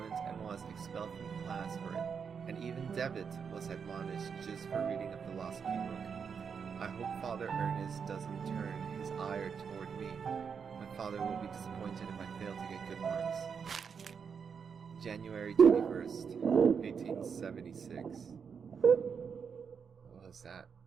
and was expelled from the class for it, and even Devitt was admonished just for reading a philosophy book. I hope Father Ernest doesn't turn his ire toward me. My father will be disappointed if I fail to get good marks. January 21st, 1876. What was that?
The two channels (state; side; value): quieter; left; 6.4 dB